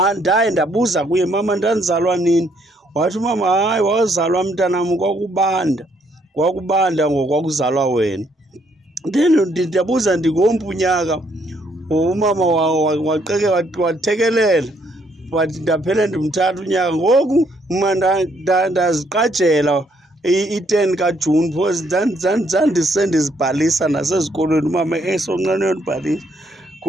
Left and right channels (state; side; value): normal; both; correlation 0.70